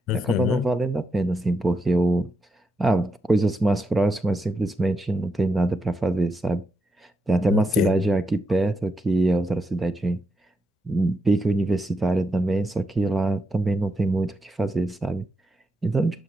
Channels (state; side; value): normal; both; correlation 0.84